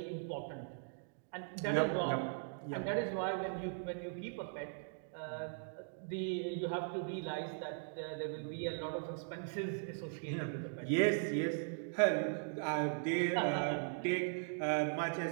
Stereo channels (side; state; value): left; silent; digital silence